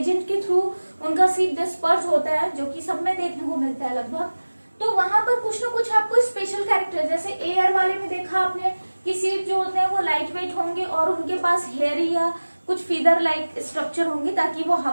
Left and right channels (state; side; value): inverted; both; correlation -1.00